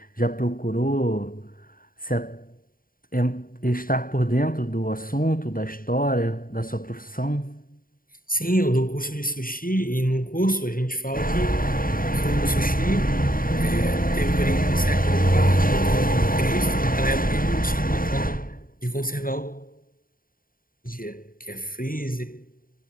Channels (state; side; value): late; right; 0.41 ms